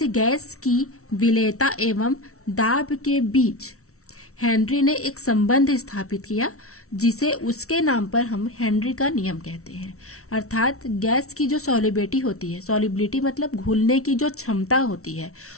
गैस की विलेयता एवं दाब के बीच हेनरी ने एक संबंध स्थापित किया, जिसे उसके नाम पर हम हेनरी का नियम कहते हैं। अर्थात गैस की जो सॉलिबिलिटी होती है, सॉलिबिलिटी मतलब घुलने की जो क्षमता होती है,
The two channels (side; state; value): right; late; 0.63 ms